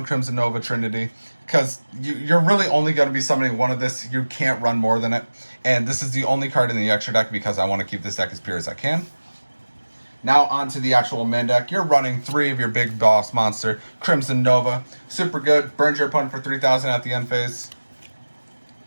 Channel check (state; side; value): inverted; both; correlation -1.00